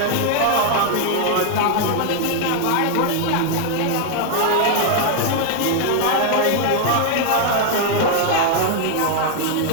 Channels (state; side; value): different; both; correlation 0.00